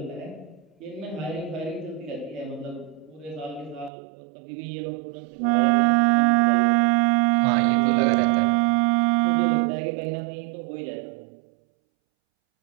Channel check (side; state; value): left; drops out; at 3.9 s